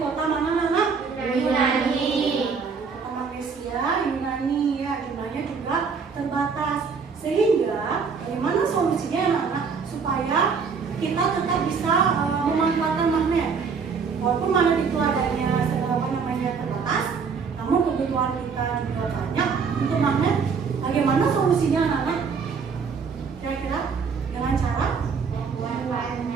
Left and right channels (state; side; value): quieter; left; 5.6 dB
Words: mana anak? Yunani. Kota Malaysia, Yunani ya, jumlahnya juga terbatas. Sehingga bagaimana solusinya anak-anak supaya kita tetap bisa memanfaatkan magnet? Walaupun magnet itu adanya terbatas, namun kebutuhan kita juga banyak untuk magnet. Bagaimana solusinya anak-anak? Kira-kira dengan cara apa?